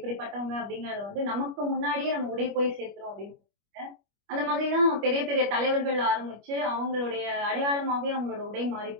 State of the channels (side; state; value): left; late; 25 ms